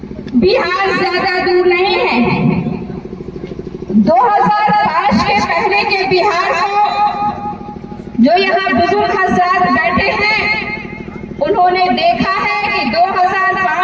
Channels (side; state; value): both; identical; correlation 1.00